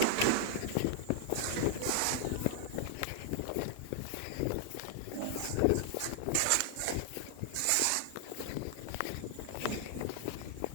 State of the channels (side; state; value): both; different; correlation 0.00